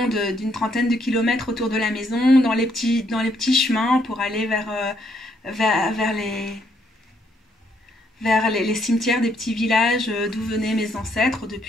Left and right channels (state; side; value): normal; both; correlation 0.71